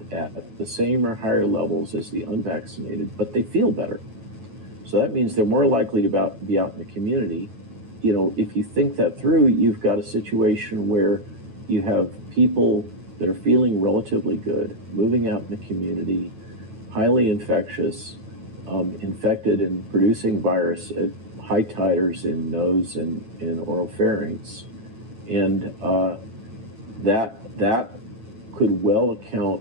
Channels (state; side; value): late; left; 9.2 ms